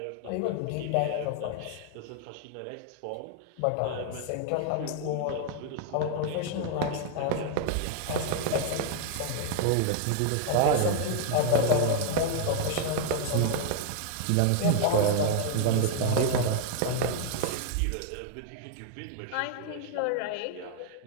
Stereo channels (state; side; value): different; both; correlation 0.00